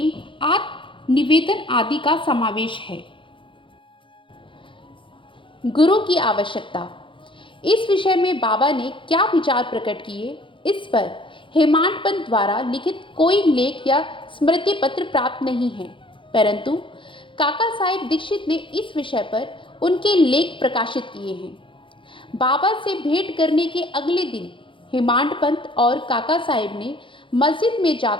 आत्मनिवेदन आदि का समावेश है। गुरु की आवश्यकता। इस विषय में बाबा ने क्या विचार प्रकट किए, इस पर हेमांड पंत द्वारा लिखित कोई लेख या स्मृति पत्र प्राप्त नहीं है, परंतु काका साहेब दीक्षित ने इस विषय पर उनके लेख प्रकाशित किए हैं। बाबा से भेंट करने के अगले दिन हेमांड पंत और काका साहेब ने मस्जिद में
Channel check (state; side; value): late; right; 0.25 ms